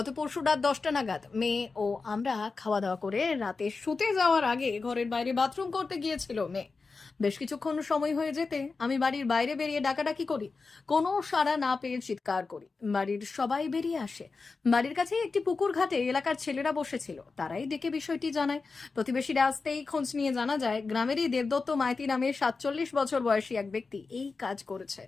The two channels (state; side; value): quieter; right; 4.3 dB